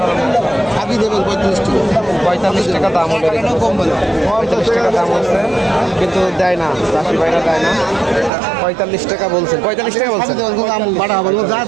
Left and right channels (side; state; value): left; drops out; at 8.3 s